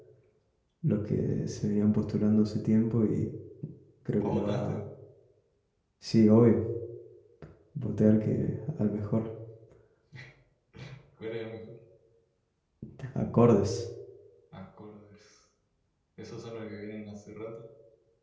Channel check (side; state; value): both; identical; correlation 1.00